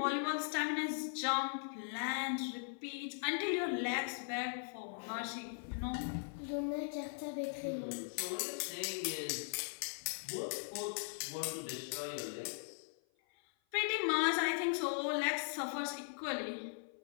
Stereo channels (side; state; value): right; silent; 51 dB below the other